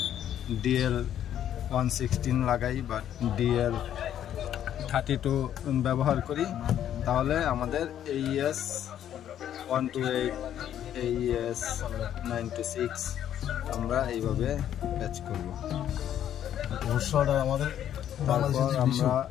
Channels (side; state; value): right; quieter; 10.5 dB